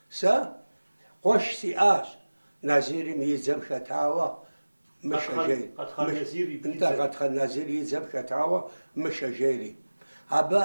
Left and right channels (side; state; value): both; inverted; correlation -1.00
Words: سا قش سياس نازيري ميزم خطاوة مشاجيري انت قد نازيري يزم خطاوة مشاجيري